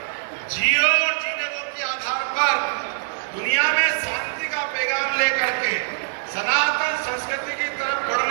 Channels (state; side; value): silent; left; 57 dB below the other